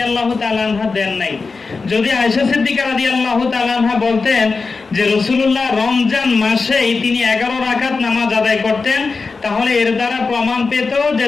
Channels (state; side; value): quieter; right; 4.4 dB